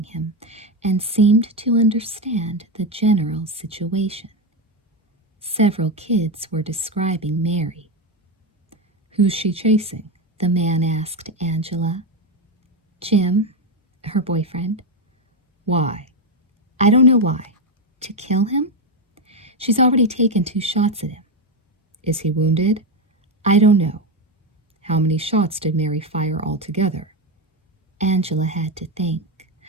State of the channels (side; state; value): both; normal; correlation 0.10